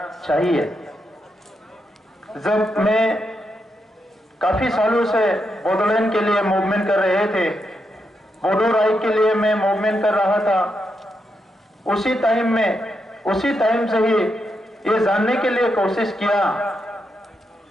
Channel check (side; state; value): both; normal; correlation 0.83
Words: चाहिए। जब मैं काफी सालों से बोडोलैंड के लिए मूवमेंट कर रहे थे, बोडो राइट के लिए मैं मूवमेंट कर रहा था, उसी टाइम से ही ये जानने के लिए कोशिश किया